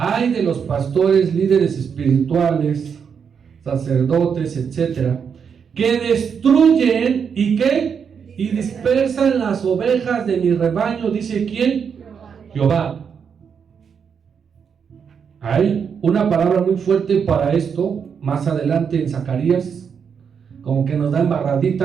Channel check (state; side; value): quieter; left; 6.8 dB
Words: de los pastores, líderes espirituales, sacerdotes, etcétera, que destruyen y ¿qué? Y dispersan las ovejas de mi rebaño, dice ¿quién? Jehová. Hay una palabra muy fuerte para esto, más adelante en Zacarías, como que nos da